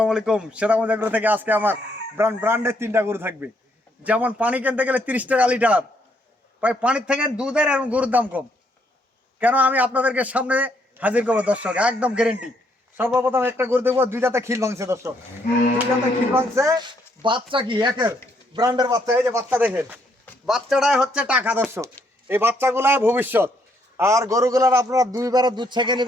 আলাইকুম। সেরামত এগ্রো থেকে আজকে আমার ব্র্যান্ডের 3টা গরু থাকবে। যেমন পানি কিনতে গেলে 30 টাকা লিটার, ভাই পানির থেকে দুধের এবং গরুর দাম কম। কেন আমি আপনাদেরকে সামনে হাজির করবো দর্শক, একদম গ্যারেন্টি। সর্বপ্রথম একটা গরু দেখবো, 2 দাঁতে খিল ভাঙছে দর্শক, 2 দাঁতে খিল ভাঙছে। বাচ্চা কি একের ব্র্যান্ডের বাচ্চা, এই যে বাচ্চা দেখেন, বাচ্চাটাই হচ্ছে টাকা দর্শক। এই বাচ্চাগুলাই ভবিষ্যৎ। আর গরুগুলার আপনারা 2 বারে দুধ ছেঁকে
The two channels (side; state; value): both; normal; correlation 0.72